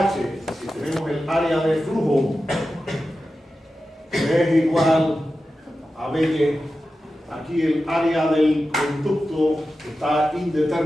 si tenemos el área de flujo, que es igual a BY, aquí el área del conducto está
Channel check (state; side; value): normal; both; correlation 0.92